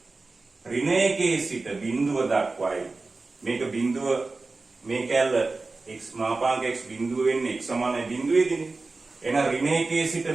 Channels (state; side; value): quieter; left; 3.6 dB